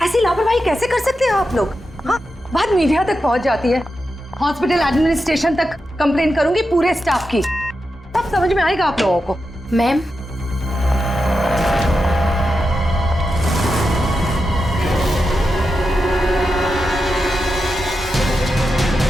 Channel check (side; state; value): both; normal; correlation 0.89